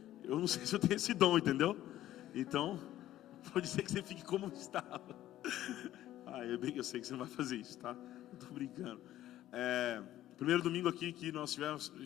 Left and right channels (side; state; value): right; quieter; 13.5 dB